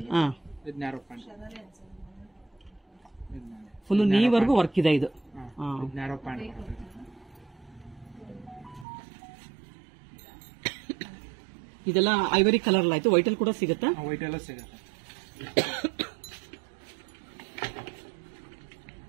ಇದು ನ್ಯಾರೋ ಪ್ಯಾಂಟ್ ಫುಲ್ ನೀವರೆಗೂ ವರ್ಕ್ ಇದೆ. ಇದು ನ್ಯಾರೋ ಪ್ಯಾಂಟ್ ಬರುತ್ತೆ. ಇದೆಲ್ಲ ಐವರಿ ಕಲರ್ ಆಯ್ತು. ವೈಟ್ ಅಲ್ಲಿ ಕೂಡ ಸಿಗುತ್ತಾ? ವೈಟ್ ಎಲ್ಲ ಸಿಗುತ್ತೆ.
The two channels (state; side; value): drops out; left; at 8.8 s